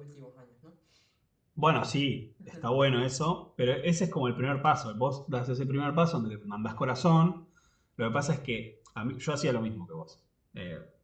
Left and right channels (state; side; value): identical; both; correlation 1.00